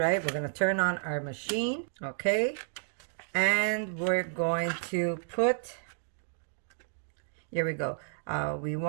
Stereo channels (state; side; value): silent; left; digital silence